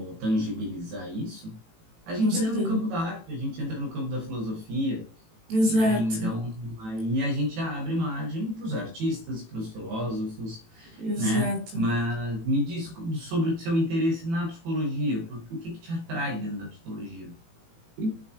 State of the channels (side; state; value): left; late; 18 ms